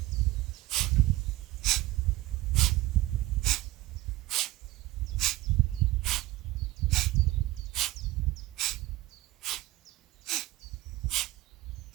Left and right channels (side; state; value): left; quieter; 17.5 dB